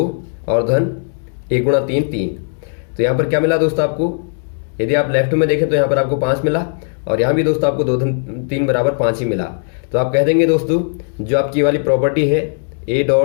और धन 1 × 3 3। तो यहाँ पर क्या मिला दोस्तों आपको, यदि आप लेफ्ट में देखें तो यहाँ पर आपको 5 मिला और यहाँ भी दोस्तों आपको 2 धन 3 बराबर 5 ही मिला। तो आप कह देंगे दोस्तों जो आपकी वाली प्रॉपर्टी है ए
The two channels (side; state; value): right; silent; digital silence